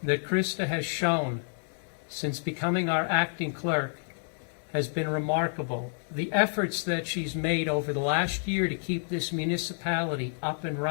that Krista has shown since becoming our acting clerk has been remarkable. The efforts that she's made over the last year to keep this municipality up and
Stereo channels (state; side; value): silent; right; digital silence